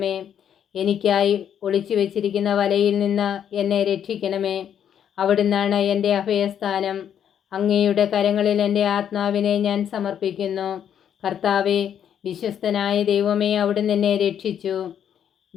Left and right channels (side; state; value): right; quieter; 9.1 dB